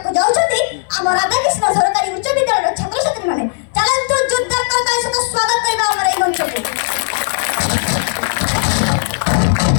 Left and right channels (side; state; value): right; silent; digital silence